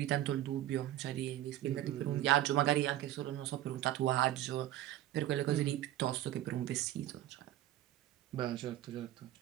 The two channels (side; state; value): left; quieter; 13.8 dB